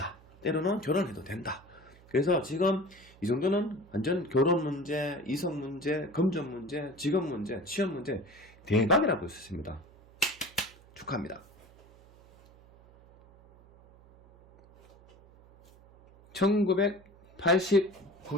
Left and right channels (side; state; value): right; noise; hum, 25 dB below the sound